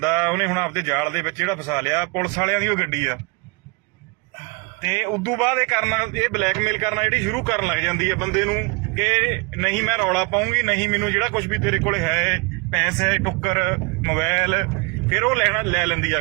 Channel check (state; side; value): quieter; left; 30.3 dB